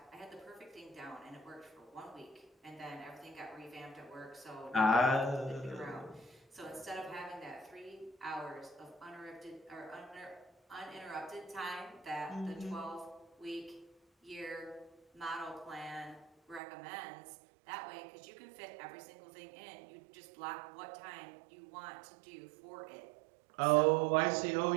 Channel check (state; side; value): drops out; left; at 16.6 s